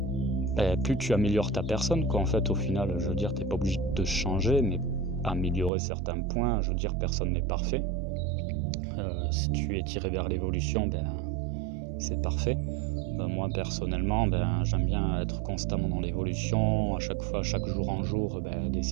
tu améliores ta personne, quoi. En fait, au final, je veux dire, t'es pas obligé de changer, mais améliorer certains points. Je veux dire, personne n'est parfait. Si tu es tiré vers l'évolution, c'est parfait. Moi personnellement, j'aime bien être constamment dans l'évolution, à chaque fois, chaque jour en jour,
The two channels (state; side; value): drops out; left; at 5.7 s